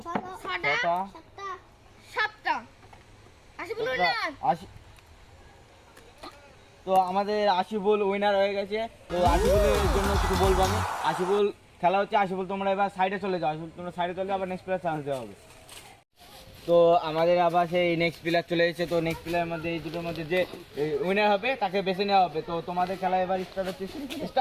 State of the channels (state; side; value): identical; both; correlation 1.00